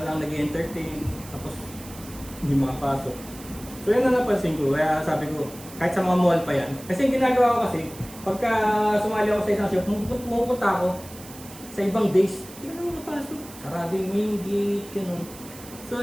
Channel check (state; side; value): noise; right; hiss, 17 dB below the sound